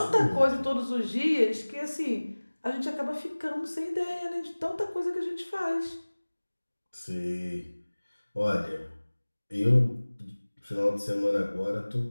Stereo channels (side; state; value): both; inverted; correlation -1.00